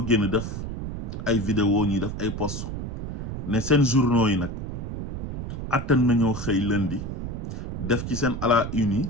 génn def ay vidéo ñuy def ay post ne seen journaux yi nag attan nañoo xëy lundi def ci seen à la une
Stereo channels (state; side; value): noise; right; rumble, 5 dB below the sound